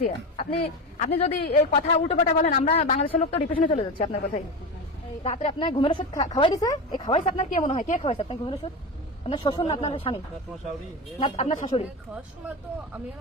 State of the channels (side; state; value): both; normal; correlation 0.22